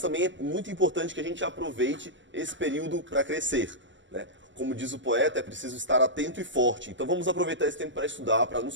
é muito importante que a gente aproveite esse período para crescer, né? Como diz o poeta, é preciso estar atento e forte. Então vamos aproveitar esse tempo para estudar, para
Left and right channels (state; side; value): late; left; 0.54 ms